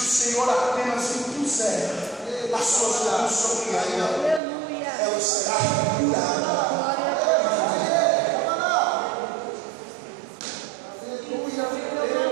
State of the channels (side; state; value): left; drops out; at 4.4 s